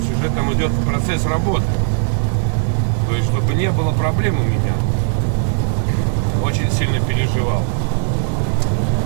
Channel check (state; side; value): silent; left; digital silence